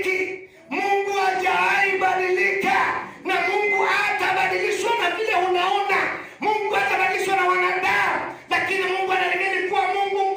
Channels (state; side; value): identical; both; correlation 1.00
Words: Mungu hajaibadilika, na Mungu hatabadilishwa na vile unaona. Mungu hatabadilishwa na wanadamu, lakini Mungu anaendelea kuwa Mungu